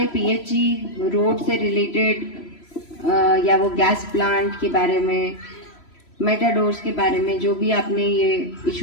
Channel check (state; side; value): late; right; 3.0 ms